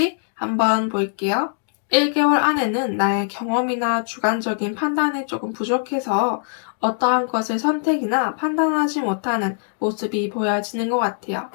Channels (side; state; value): right; silent; 64 dB below the other